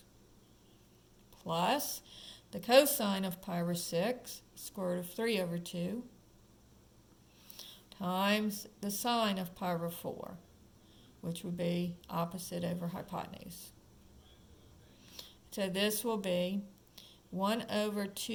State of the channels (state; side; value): identical; both; correlation 1.00